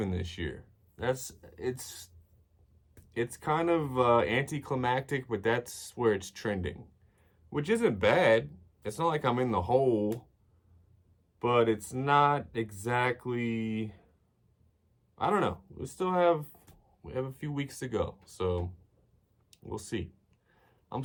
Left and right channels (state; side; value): identical; both; correlation 1.00